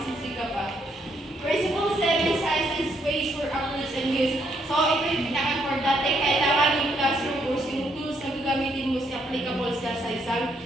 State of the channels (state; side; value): normal; both; correlation 0.73